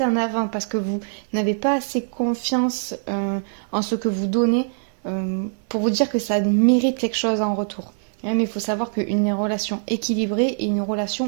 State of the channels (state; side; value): silent; left; digital silence